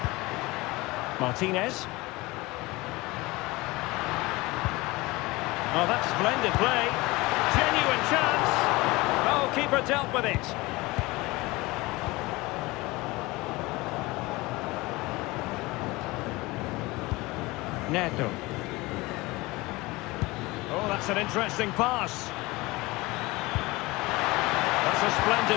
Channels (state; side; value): quieter; right; 21.9 dB